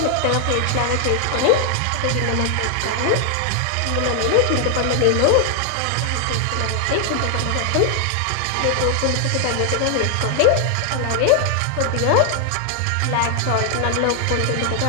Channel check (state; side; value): different; both; correlation 0.00